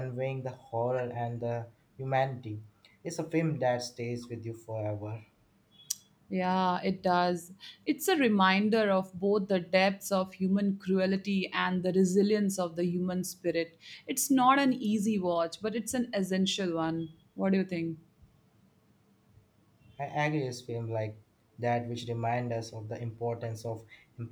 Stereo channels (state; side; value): identical; both; correlation 1.00